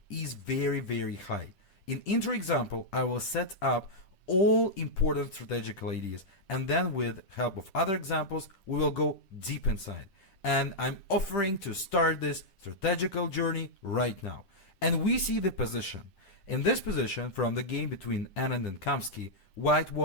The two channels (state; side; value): late; right; 10 ms